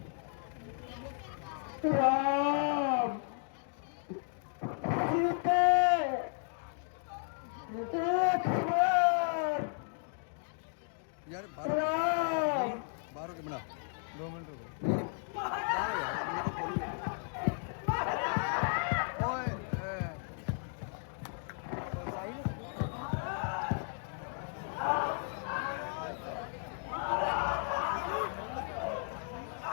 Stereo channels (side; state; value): right; silent; 55 dB below the other